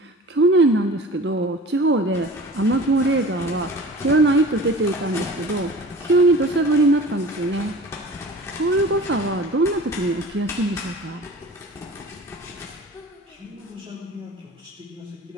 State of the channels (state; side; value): normal; both; correlation 0.40